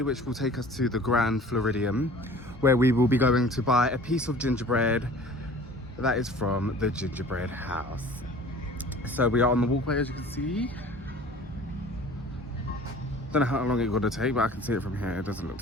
which will take us to the Grand Floridian, where we will be going to buy a piece of gingerbread that is from the gingerbread house. So we are on the walkway, as you can see. Don't know how long it's gonna take, but I can see it from here. It doesn't look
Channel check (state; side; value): normal; both; correlation 0.46